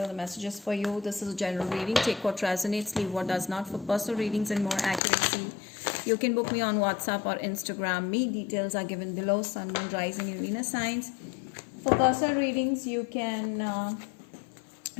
the messages for you. This is a general reading. Take what resonates, leave what does not. For personal readings and more accuracy, you can book me on WhatsApp or Instagram. Me details are given below. Sun, Moon, Rising and Venus signs. For personal readings, you can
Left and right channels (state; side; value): drops out; right; at 5.0 s